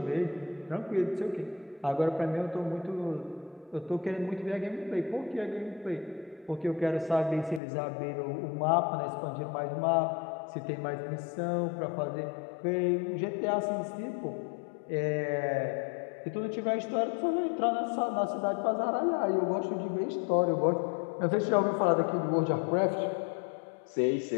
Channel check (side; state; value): right; drops out; at 7.6 s